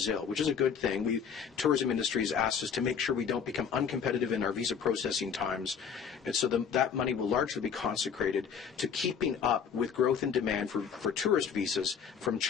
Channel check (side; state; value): right; quieter; 7.0 dB